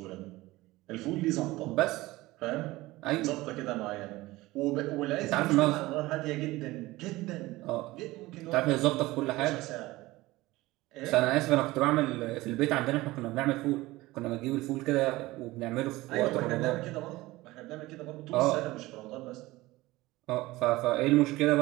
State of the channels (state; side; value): quieter; left; 19.1 dB